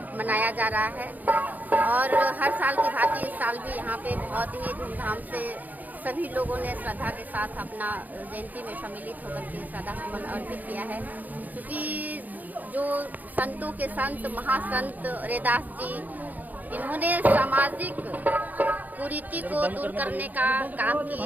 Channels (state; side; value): late; left; 0.082 ms